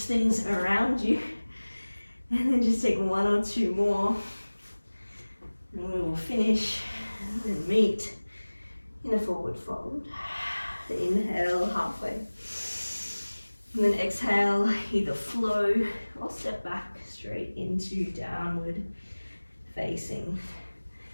things around you. And then just take one or two more. And we will finish and meet in a forward fold. Inhale, halfway. And then exhale, either flow or step back straight into downward facing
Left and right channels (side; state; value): both; inverted; correlation -1.00